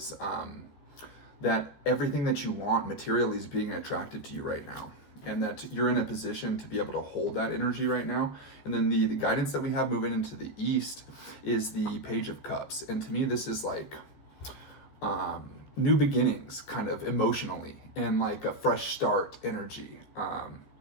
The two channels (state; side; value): late; right; 14 ms